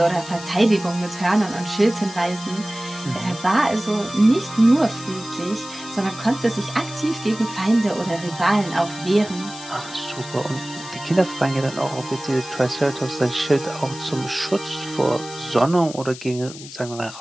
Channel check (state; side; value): noise; left; hiss, 14 dB below the sound